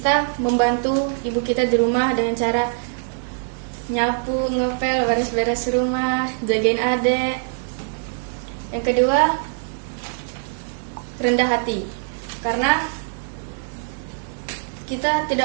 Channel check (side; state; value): left; silent; 64 dB below the other